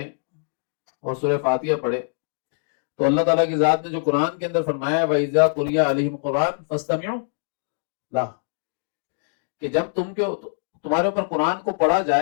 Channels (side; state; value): right; silent; digital silence